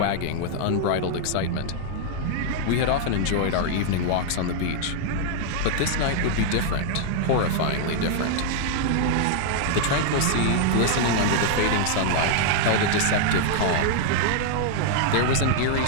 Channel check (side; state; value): both; different; correlation 0.00